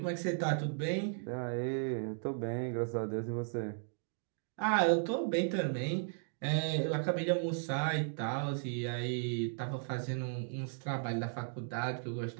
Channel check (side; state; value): left; silent; digital silence